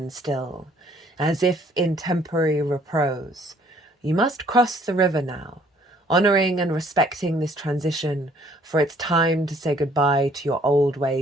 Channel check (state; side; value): normal; both; correlation 0.61